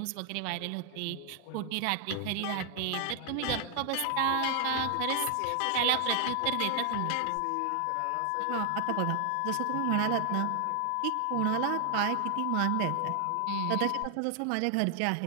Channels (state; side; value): different; both; correlation 0.00